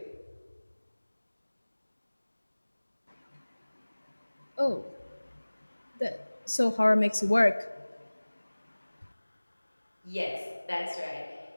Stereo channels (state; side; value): inverted; both; correlation -1.00